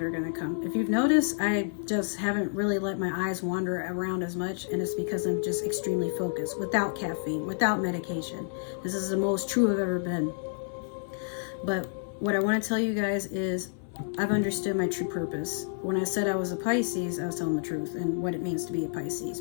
are going to come. If you've noticed, I just haven't really let my eyes wander around as much, and it's because I'm just extremely focused, without caffeine, without medication. This is the most true I've ever been. But what I want to tell you guys is I've understood my true purpose. When I said I was a Pisces, I was telling the truth and what it means to be a Pisces,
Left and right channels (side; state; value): right; silent; 56 dB below the other